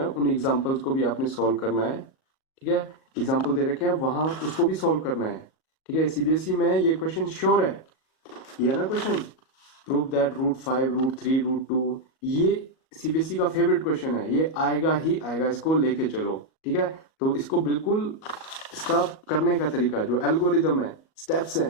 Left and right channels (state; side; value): late; right; 37 ms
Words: उन एग्जाम्पल्स को भी आपने सॉल्व करना है, ठीक है, एग्जाम्पल दे रखे हैं वहां उसको भी सॉल्व करना है। ठीक है, सीबीएसई में ये क्वेश्चन श्योर है, ये ना क्वेश्चन, प्रूव दैट √5 √3 √2, ये सीबीएसई का फेवरेट क्वेश्चन है, ये आएगा ही आएगा, इसको लेके चलो। ठीक है, तो इसको बिल्कुल, इसका करने का तरीका जो एल्गोरिदम है, स्टेप्स